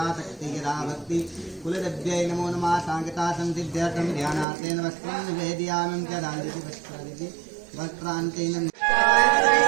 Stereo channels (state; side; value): drops out; left; at 4.5 s